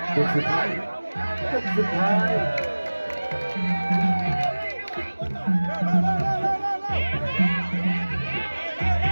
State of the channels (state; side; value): inverted; both; correlation -1.00